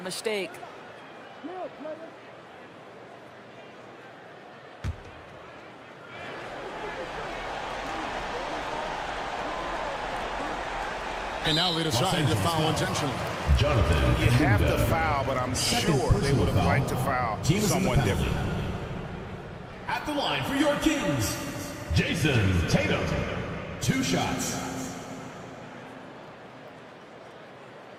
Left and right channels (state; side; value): identical; both; correlation 1.00